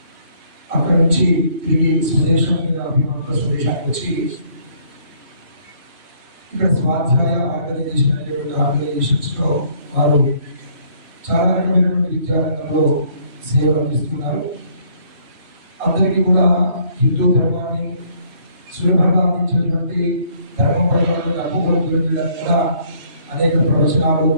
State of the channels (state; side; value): late; left; 3.0 ms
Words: అక్కడ నుంచి తిరిగి స్వదేశం మీద అభిమానంతో స్వదేశానికి వచ్చి ఇక్కడ స్వాధ్యాయ ఆర్గనైజేషన్ అనేటువంటి ఆర్గనైజేషన్స్లో వారు చాలా రకమైనటువంటి విద్యారంగంలో సేవలు అందిస్తున్నారు. అందరికీ కూడా హిందూ ధర్మాన్ని సులభంగా అందించినటువంటి ధర్మం పట్ల అప్పుకోవడం తెలియజేయడానికి కూడా అనేక ప్రవచనాలు